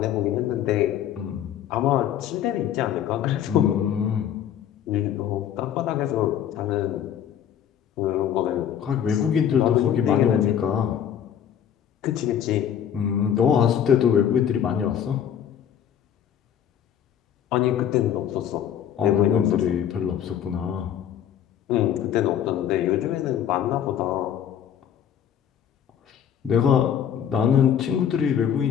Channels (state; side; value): quieter; right; 9.4 dB